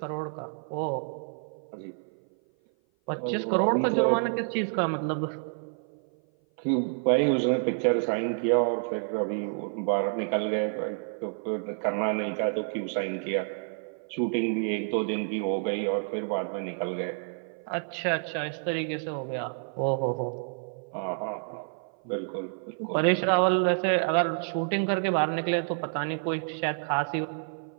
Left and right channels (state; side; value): silent; left; 56 dB below the other